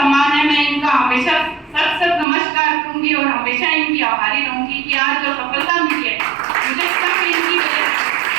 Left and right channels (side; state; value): left; drops out; at 2.2 s